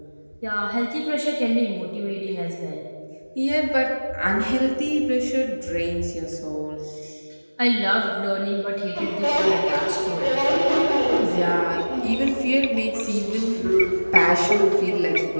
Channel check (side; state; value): both; inverted; correlation -1.00